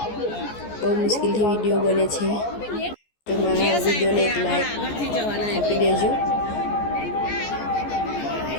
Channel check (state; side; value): late; right; 14 ms